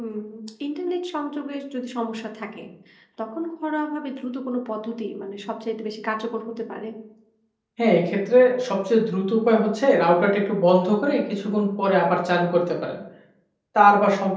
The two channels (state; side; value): identical; both; correlation 1.00